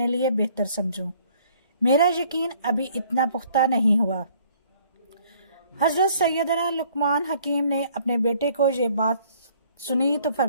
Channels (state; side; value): inverted; both; correlation -0.60